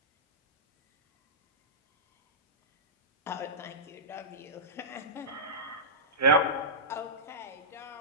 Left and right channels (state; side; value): normal; both; correlation -0.15